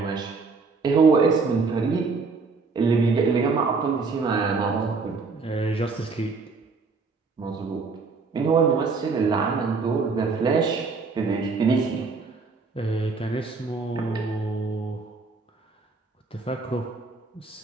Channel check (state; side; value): quieter; left; 4.4 dB